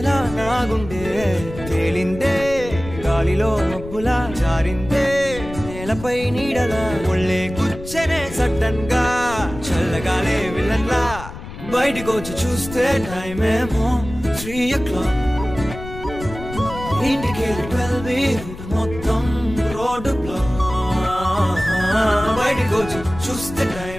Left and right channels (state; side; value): noise; left; rumble, 12 dB below the sound